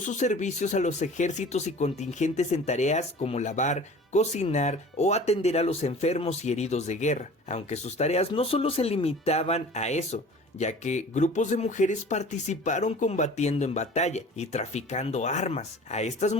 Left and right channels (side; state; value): both; normal; correlation 0.43